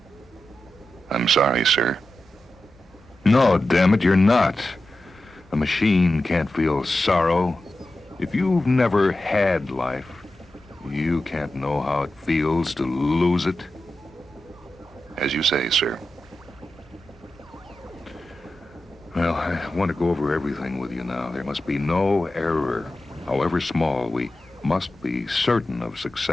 I'm sorry, sir. No, damn it, you're not. A machine can't feel sorrow. If you've never had life, you can't know how it feels to lose it. As you say, sir. Well, I want to go over everything with you now. There must be no error. However small, we must be certain of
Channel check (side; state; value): both; normal; correlation 0.92